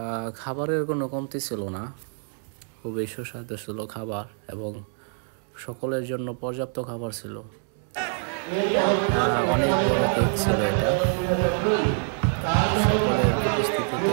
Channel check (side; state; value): left; silent; 61 dB below the other